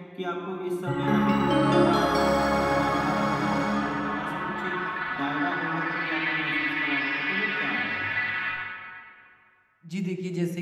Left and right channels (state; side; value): identical; both; correlation 1.00